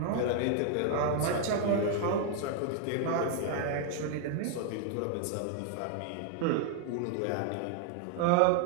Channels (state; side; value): different; both; correlation 0.00